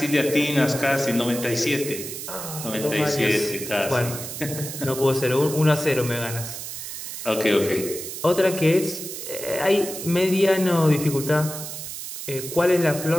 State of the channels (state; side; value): noise; right; hiss, 8 dB below the sound